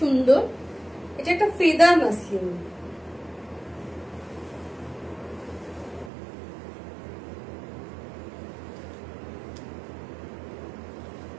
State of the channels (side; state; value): left; drops out; at 6.1 s